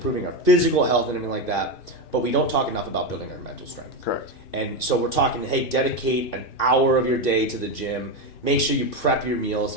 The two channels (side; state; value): right; late; 2.9 ms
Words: our physical health and everything like that. But we don't talk enough about building our mental strength. Correct. And so we're talking, hey, dedicate an hour of your day to the gym. Make sure you prep your meals